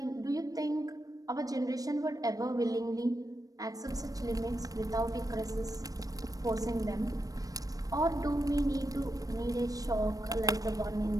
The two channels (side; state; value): left; late; 0.18 ms